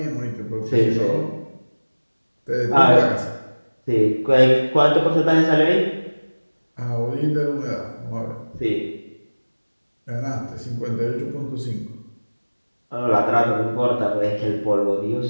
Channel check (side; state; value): both; inverted; correlation -1.00